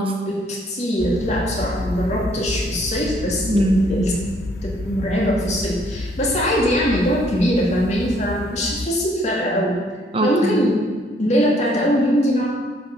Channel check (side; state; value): both; normal; correlation 0.65